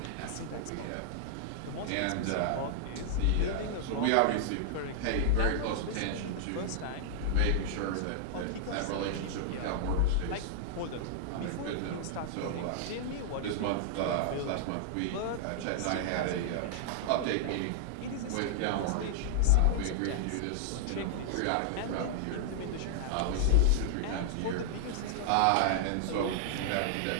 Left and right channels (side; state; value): both; different; correlation -0.01